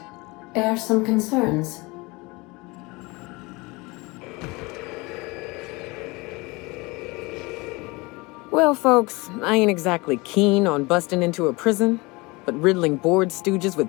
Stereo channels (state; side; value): quieter; right; 24.7 dB